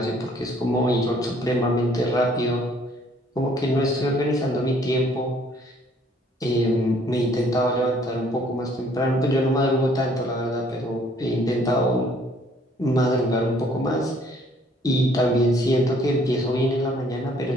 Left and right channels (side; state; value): both; normal; correlation 0.61